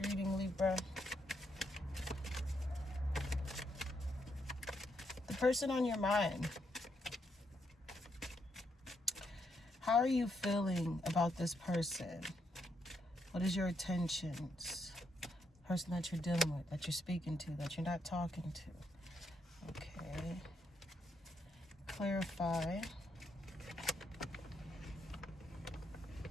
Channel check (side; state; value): both; normal; correlation 0.78